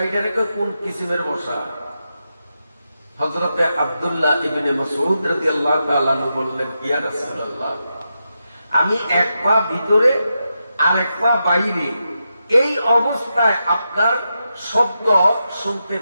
এটারে কয় কোন কিসিমের বসা? হযরতে আব্দুল্লাহ ইবনে মাসউদ রাদিয়াল্লাহু তাআলা আনহু বললেন, ইয়া রাসূলুল্লাহ, আমি এক পা ভিতরে আর এক পা বাইরে, এই অবস্থায় আপনার শব্দ শুনতে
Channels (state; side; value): inverted; both; correlation -0.87